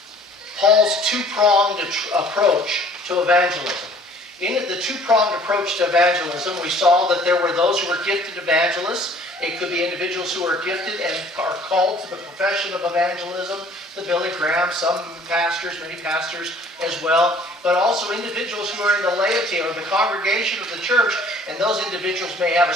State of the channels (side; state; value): both; normal; correlation 0.54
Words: Paul's two-pronged approach to evangelism. In the two-pronged approach to evangelism, we saw that there were those who were gifted evangelists. It could be individuals who are gifted and are called to the profession of evangelism, the Billy Graham, some pastors, many pastors as well, but also individuals who are in the laity or the congregation of the church, and those individuals may have a